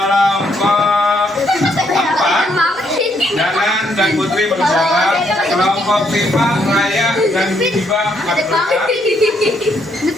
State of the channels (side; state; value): both; normal; correlation 0.72